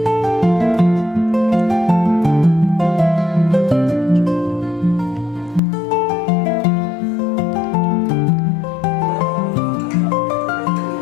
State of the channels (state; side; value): drops out; right; at 5.6 s